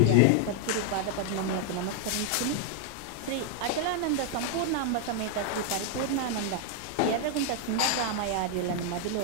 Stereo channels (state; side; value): different; both; correlation 0.00